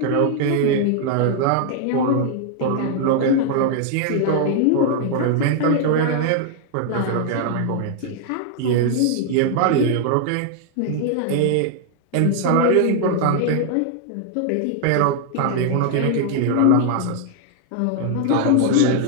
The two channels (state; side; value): different; both; correlation 0.00